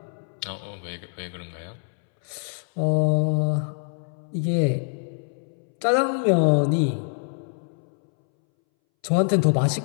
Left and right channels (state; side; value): silent; right; 62 dB below the other